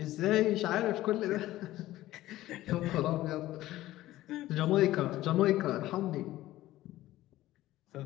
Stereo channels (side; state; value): right; quieter; 15.6 dB